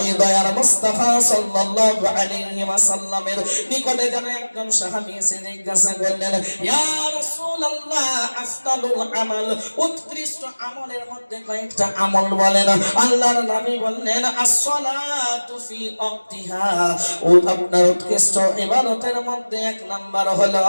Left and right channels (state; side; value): inverted; both; correlation -1.00